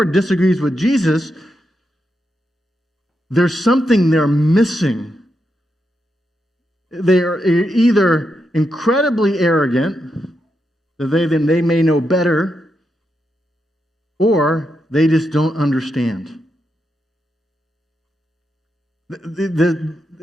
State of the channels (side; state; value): both; normal; correlation 0.84